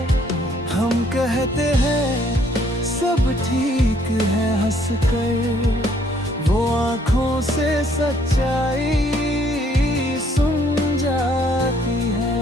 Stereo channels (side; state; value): both; normal; correlation 0.64